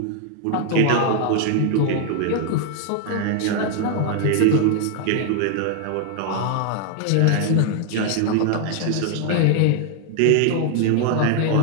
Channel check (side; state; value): both; different; correlation 0.00